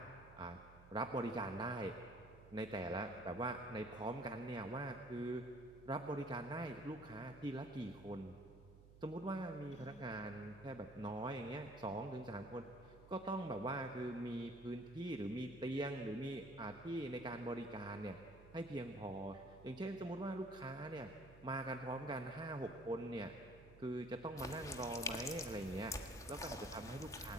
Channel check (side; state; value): right; noise; hum, 19 dB below the sound